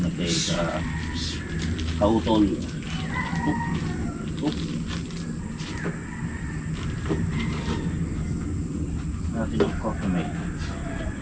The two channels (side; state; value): both; identical; correlation 1.00